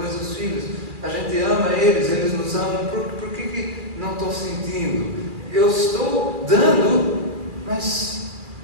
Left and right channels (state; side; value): late; left; 2.4 ms